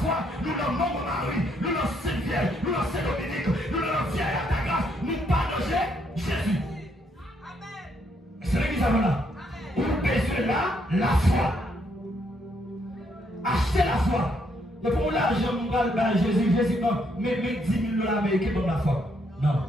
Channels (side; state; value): both; normal; correlation 0.73